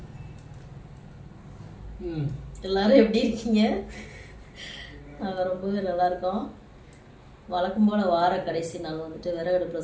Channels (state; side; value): identical; both; correlation 1.00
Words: எல்லாரும் எப்படி இருக்கீங்க? நாங்கள் ரொம்பவே நல்லா இருக்கோம். வழக்கம் போல் வார கடைசி நாள் வந்துட்டு